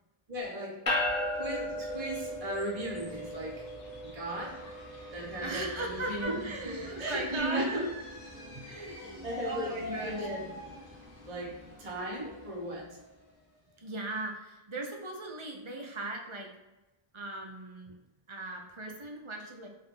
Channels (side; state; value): left; late; 1.3 ms